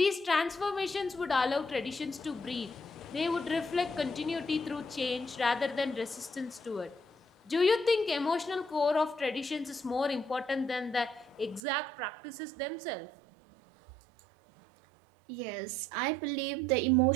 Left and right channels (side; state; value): left; drops out; at 11.6 s